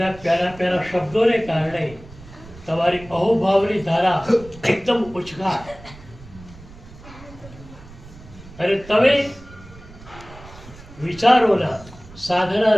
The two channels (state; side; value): noise; right; rumble, 19 dB below the sound